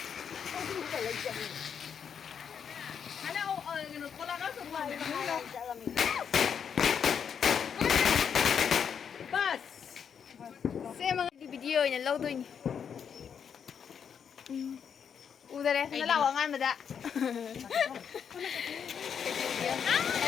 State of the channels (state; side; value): quieter; right; 7.4 dB